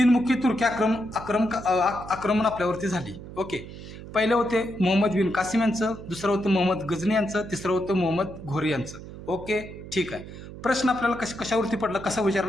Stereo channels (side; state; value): right; noise; hum, 13 dB below the sound